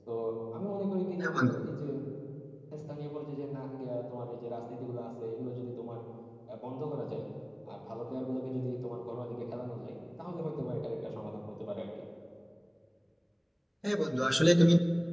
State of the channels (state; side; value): identical; both; correlation 1.00